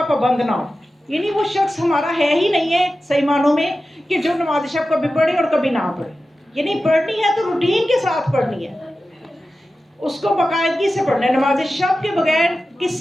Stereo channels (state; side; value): normal; both; correlation 0.93